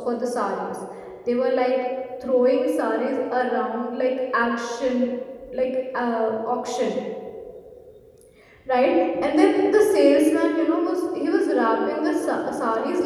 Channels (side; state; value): both; identical; correlation 1.00